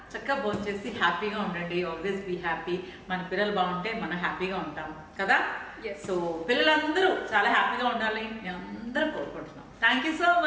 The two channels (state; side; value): identical; both; correlation 1.00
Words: చక్కగా భోజనం చేసి హ్యాపీగా ఉండండి. Always be happy. మన పిల్లలు బాగుంటే మనం హ్యాపీగా ఉంటాం కదా. సో పిల్లలందరూ చాలా హ్యాపీగా ఉండాలి నేను అందరూ కోరుకుంటున్నాం. Thank you so